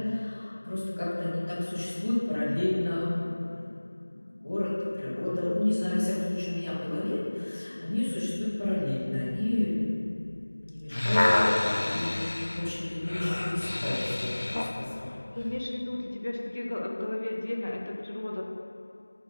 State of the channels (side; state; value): both; inverted; correlation -1.00